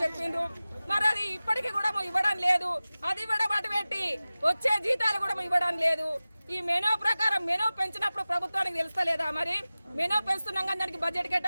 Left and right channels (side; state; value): both; inverted; correlation -0.97